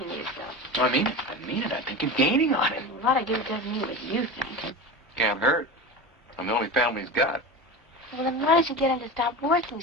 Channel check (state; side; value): normal; both; correlation 0.27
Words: yourself. I mean it. I mean it. I think you're gaining on it. A lot of good doesn't mean what you think. Can't hurt. I'm the only family he's got. Well, then why don't you get him to stop working